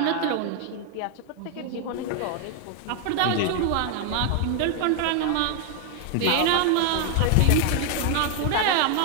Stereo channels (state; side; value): different; both; correlation 0.00